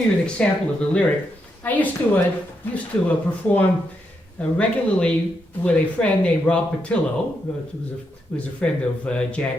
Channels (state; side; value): normal; both; correlation 0.81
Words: you an example of the lyric, I used to perform regularly with a friend named Rob Patillo, who was a friend of